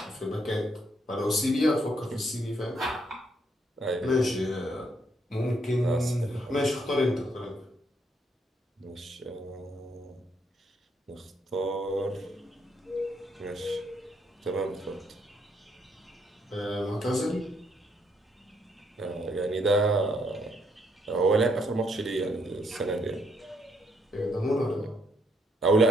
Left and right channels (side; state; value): both; normal; correlation 0.72